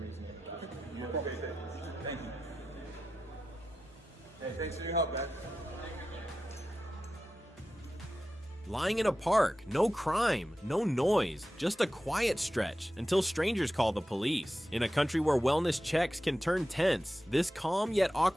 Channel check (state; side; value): normal; both; correlation 0.92